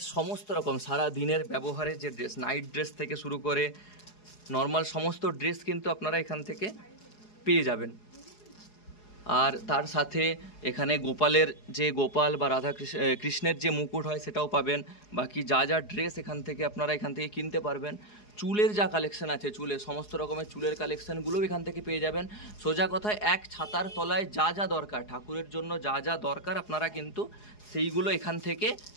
সমস্ত রকম সারা দিনের ব্যবহারের যে ড্রেস, নাইট ড্রেস থেকে শুরু করে নর্মাল সমস্ত ড্রেস কিন্তু আপনারা এখান থেকে পেয়ে যাবেন। আর তার সাথে এখানে গোপালের যে গোপাল বা রাধা কৃষ্ণের যে মুকুট হয় সেটাও পাবেন। বাকি যা যা ড্রেস এখান থেকে আপনারা এখান থেকে কিনতে পারবেন। চুলের যা কালেকশন আছে, চুলের সমস্ত রকমের চুলের কালেকশানগুলোও এখান থেকে পেয়ে যাবেন। সোজা কথায় এক ছাতার তলায় যা যা দরকার, ঠাকুরের জন্য যা যা দরকার আপনারা কিন্তু সেইগুলো এখান থেকে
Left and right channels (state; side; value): late; right; 4.8 ms